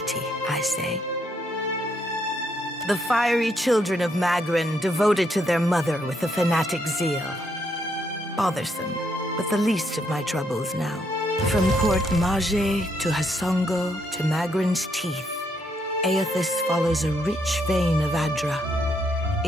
I say. The fiery children of Magran devoted to their mother with a fanatic zeal. Bothersome, but the least of my troubles now. From Port Mage to Hasongo to Magran's teeth, Aethys follows a rich vein of Adra.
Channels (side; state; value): both; normal; correlation 0.75